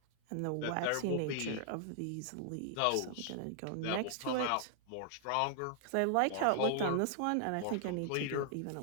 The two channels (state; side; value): different; both; correlation 0.00